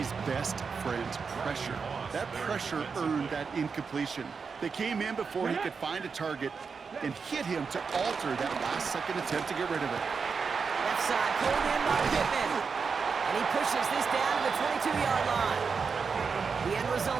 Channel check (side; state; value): left; quieter; 5.4 dB